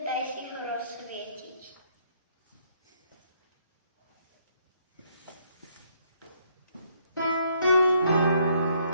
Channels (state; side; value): inverted; both; correlation -0.69